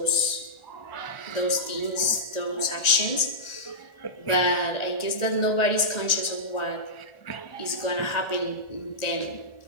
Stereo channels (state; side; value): late; right; 1.4 ms